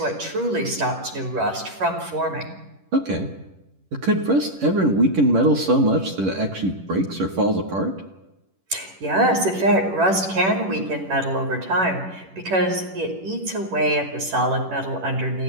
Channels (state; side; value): late; left; 11 ms